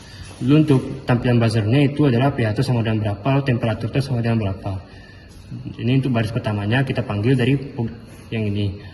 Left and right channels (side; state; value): both; identical; correlation 1.00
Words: Lalu untuk tampilan buzzernya itu adalah pH itu sama dengan berapa, lalu temperatur itu sama dengan berapa. Ini untuk baris pertamanya kita panggil dari yang ini.